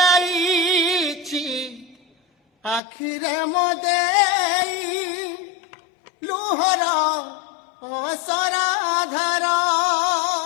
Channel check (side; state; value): right; drops out; at 2.8 s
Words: আখিরে মদেই লুহর অসরাধার